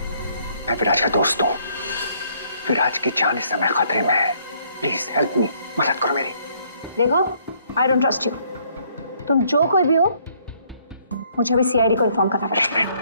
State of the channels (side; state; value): both; inverted; correlation -0.66